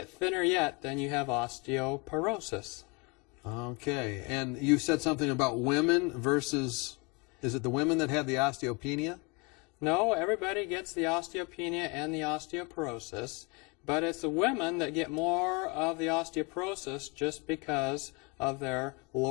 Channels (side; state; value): right; quieter; 29.7 dB